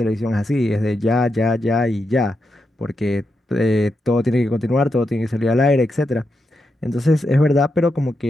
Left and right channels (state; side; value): normal; both; correlation 0.85